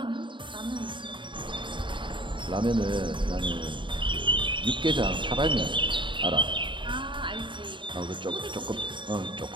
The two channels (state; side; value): late; left; 0.23 ms